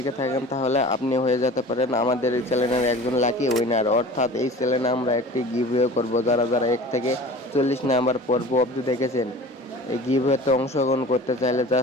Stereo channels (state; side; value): normal; both; correlation 0.40